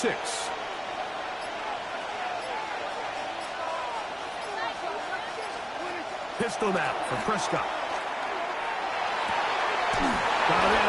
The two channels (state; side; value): identical; both; correlation 1.00